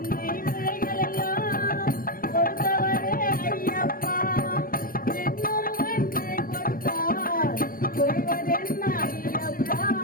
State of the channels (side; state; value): right; late; 0.41 ms